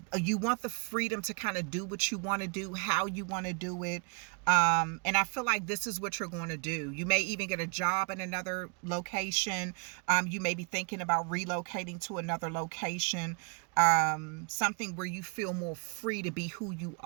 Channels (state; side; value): quieter; left; 38.0 dB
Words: You want the freedom to kind of do what you want to do, how you want to do it. And I feel like this is what you're going to do. You may even get a job in another location. You may be thinking about relocating to another location. Something where you feel more free to be who you